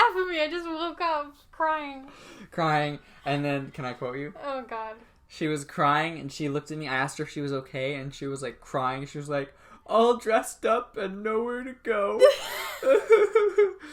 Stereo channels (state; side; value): identical; both; correlation 1.00